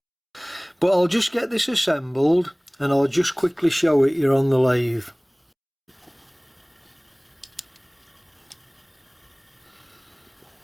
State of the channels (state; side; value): identical; both; correlation 1.00